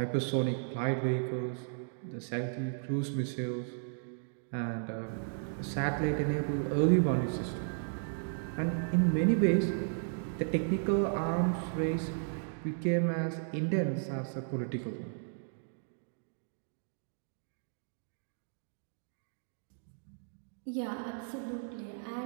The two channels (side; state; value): left; silent; digital silence